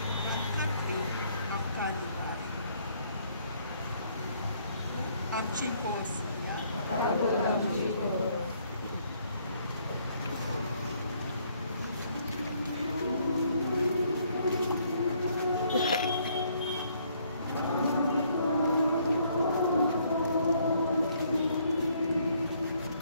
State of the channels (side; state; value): both; inverted; correlation -0.67